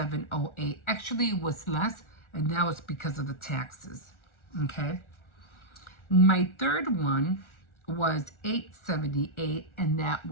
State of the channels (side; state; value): right; late; 1.4 ms